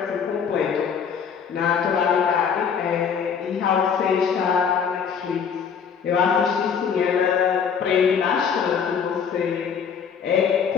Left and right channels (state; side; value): quieter; right; 6.9 dB